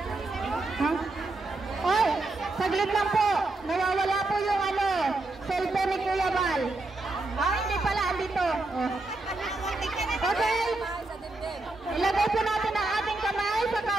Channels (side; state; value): left; quieter; 3.0 dB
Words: Oy, saglit lang po. Nawawala po yung cellphone ni Kuya Bal. Hindi pala, andito. Okay. Ilagay po natin ang ating kamay sa